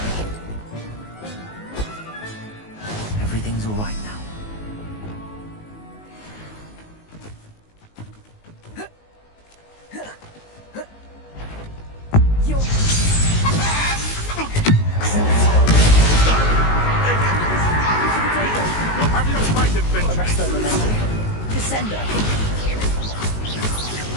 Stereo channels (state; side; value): late; right; 19 ms